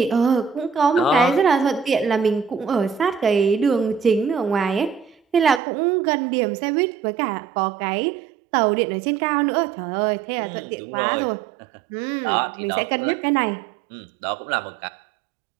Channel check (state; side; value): drops out; left; at 5.6 s